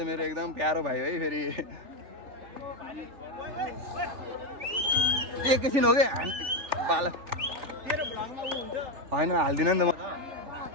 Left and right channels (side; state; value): left; late; 3.4 ms